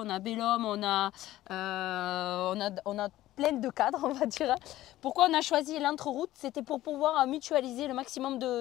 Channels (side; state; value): right; quieter; 15.1 dB